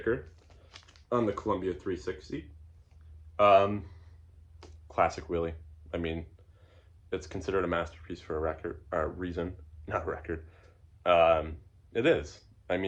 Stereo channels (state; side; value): identical; both; correlation 1.00